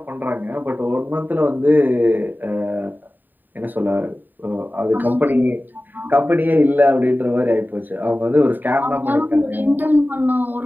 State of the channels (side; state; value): left; late; 0.090 ms